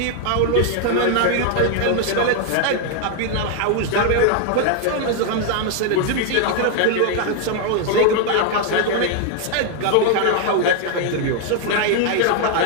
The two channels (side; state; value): both; different; correlation 0.00